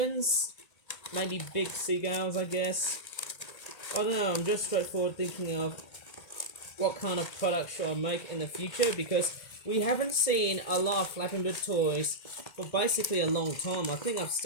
maybe big seagulls, I guess. I don't know, I'm just straightforward thinking of what kind of product should I make in the future, because we haven't seen a lot of flapping bird toys for basically a long time. I think I've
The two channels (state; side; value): late; right; 1.9 ms